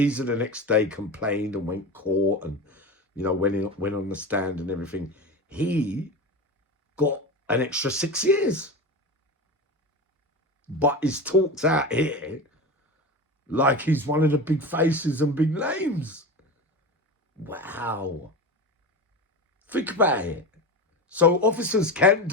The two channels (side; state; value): both; normal; correlation 0.26